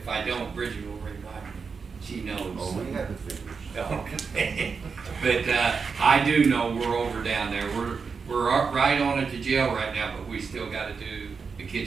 I don't, Bridget will remind me. She knows. Oh, we have the figures. Okay. But I do know we're over down there. We're right on at the jail right now, but we still gotta do the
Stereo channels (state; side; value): quieter; left; 5.3 dB